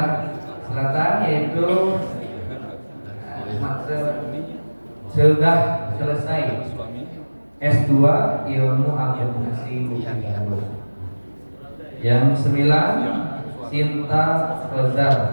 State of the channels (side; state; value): both; inverted; correlation -1.00